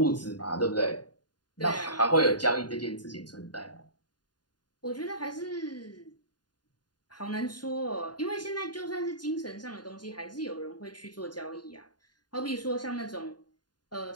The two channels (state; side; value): late; right; 0.70 ms